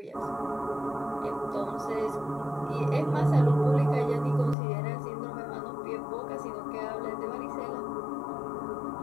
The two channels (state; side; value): drops out; right; at 4.5 s